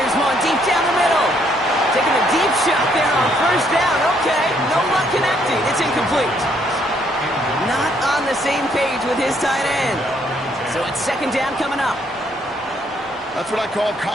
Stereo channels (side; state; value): both; normal; correlation 0.69